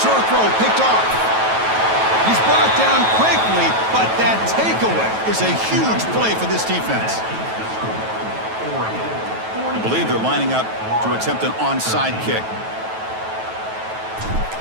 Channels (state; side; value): late; left; 9.2 ms